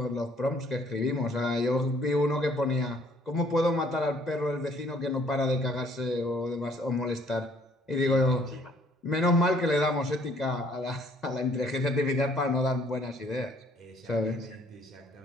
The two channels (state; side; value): normal; both; correlation 0.61